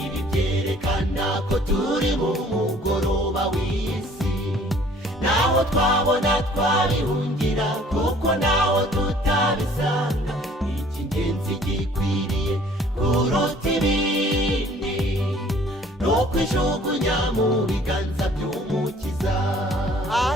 byerekana ko turi mu mugoroba w'isi, naho twabona twabihungira kuko naho tutabisanga, icy'ingenzi gikwiriye kuruta ibindi ni ukwijugunya mu biganza by'umukiza.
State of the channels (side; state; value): both; normal; correlation 0.55